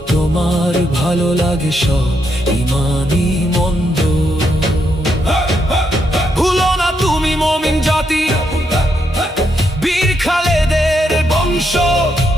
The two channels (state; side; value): normal; both; correlation 0.79